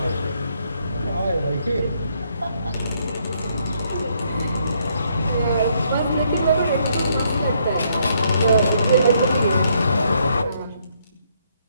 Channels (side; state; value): both; inverted; correlation -0.71